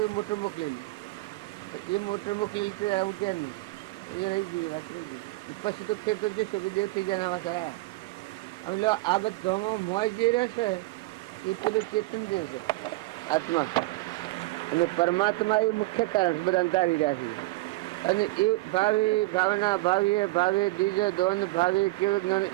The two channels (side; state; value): left; quieter; 20.8 dB